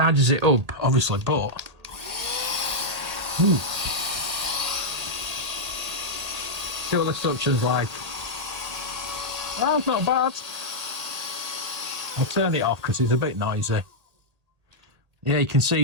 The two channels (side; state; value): left; late; 1.8 ms